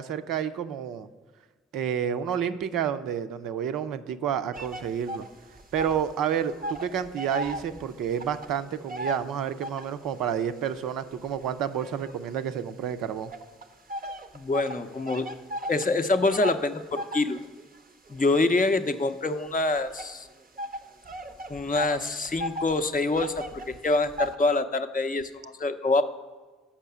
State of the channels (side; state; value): both; normal; correlation 0.40